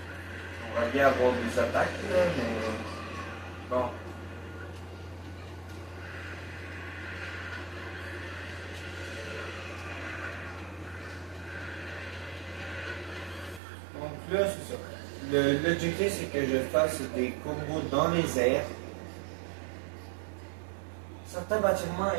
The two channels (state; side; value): drops out; left; at 13.6 s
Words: On va bien avoir des attaques là, mais. Bon. Donc là, c'est ça. L'objectif, c'est que je fasse des combos dans les airs. Certains bâtiments